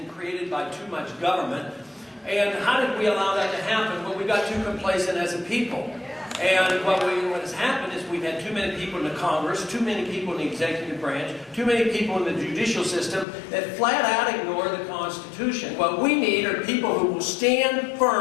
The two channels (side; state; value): right; drops out; at 13.2 s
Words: created by too much government. And how did we allow that to happen? Well, we got too complacent as a people. And what has happened is we've had too many people in the Congress, too many people in the executive branch, too many people in the judicial system that flat out ignore the Constitution. What we need are people who will stand